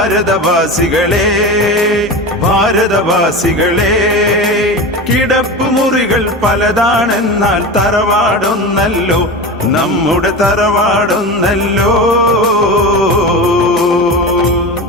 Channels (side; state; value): both; normal; correlation 0.27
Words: ഭാരതവാസികളെ. കിടപ്പ് മുറികൾ പലതാണെന്നാൽ തറവാടൊന്നല്ലോ, നമ്മുടെ തറവാടൊന്നല്ലോ.